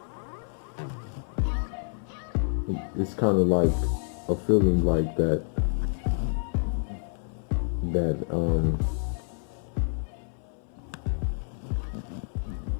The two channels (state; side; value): silent; right; 59 dB below the other